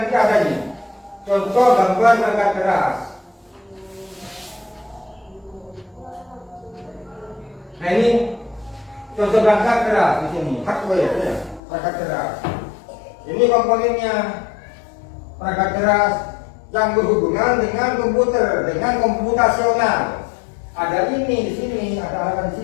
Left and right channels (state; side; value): drops out; right; at 11.6 s